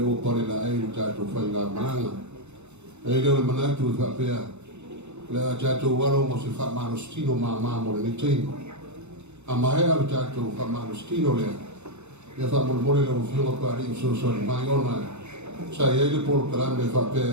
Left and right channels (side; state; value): left; late; 0.82 ms